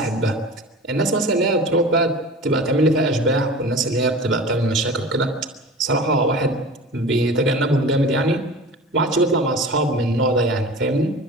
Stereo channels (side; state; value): both; normal; correlation 0.37